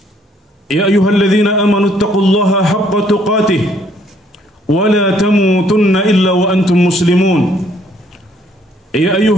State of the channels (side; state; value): both; normal; correlation 0.65